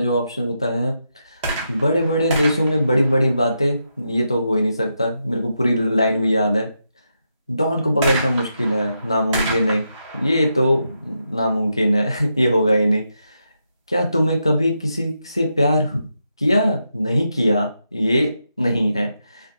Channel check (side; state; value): both; inverted; correlation -0.84